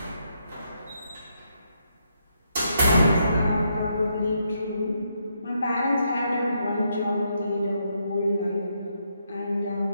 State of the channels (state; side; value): inverted; both; correlation -0.78